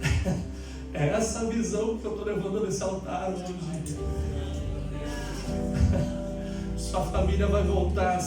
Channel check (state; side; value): identical; both; correlation 1.00